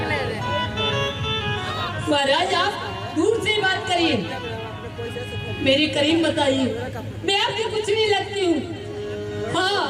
महाराज आप दूर से बात करिए, मेरे करीब बताइए, मैं आपकी कुछ नहीं लगती हूँ।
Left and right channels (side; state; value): both; identical; correlation 1.00